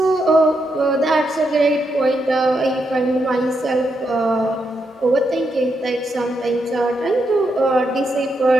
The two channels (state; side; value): normal; both; correlation 0.82